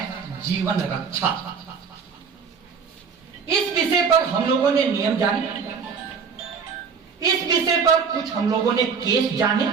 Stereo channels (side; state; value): left; quieter; 5.9 dB